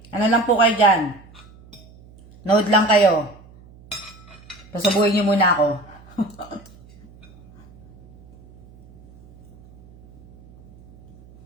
Ano lang po kayo dyan? Nood lang kayo. Pasabuhin nyo muna ako.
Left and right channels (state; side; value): noise; right; hum, 25 dB below the sound